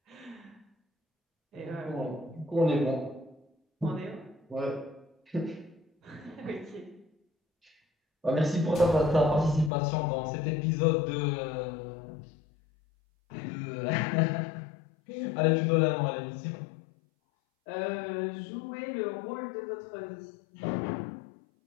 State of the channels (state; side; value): drops out; right; at 9.7 s